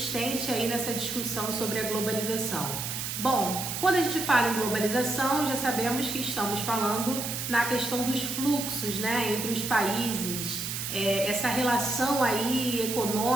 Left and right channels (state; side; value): noise; right; hiss, 4 dB below the sound